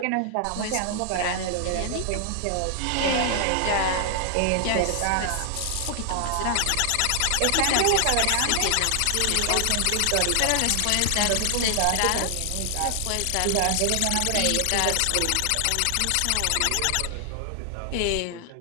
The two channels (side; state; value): both; different; correlation 0.00